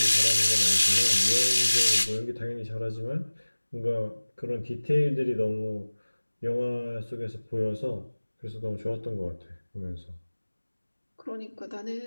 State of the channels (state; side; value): inverted; both; correlation -1.00